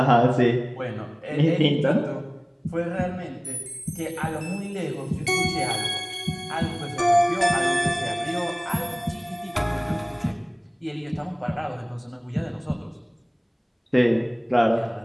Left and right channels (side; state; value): both; identical; correlation 1.00